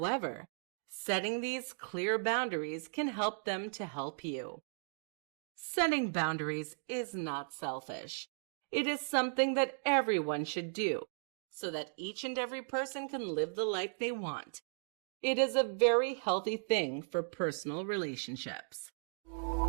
setting these clear boundaries can help them to help you. Setting boundaries is not selfish. It is something that everyone should do so that each and every person can live the life they want. It is a very healthy thing for personal relationships.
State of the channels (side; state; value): left; silent; digital silence